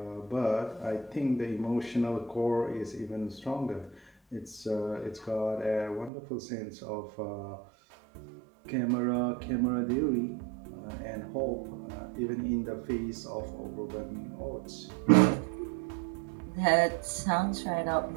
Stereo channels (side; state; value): left; drops out; at 6.1 s